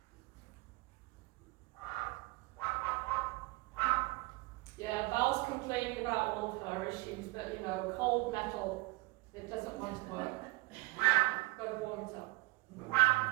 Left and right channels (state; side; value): quieter; left; 22.9 dB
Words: Yeah, Val's complaining about all of her issues, but you know, cold metal, it doesn't want to work. Got to warm it up.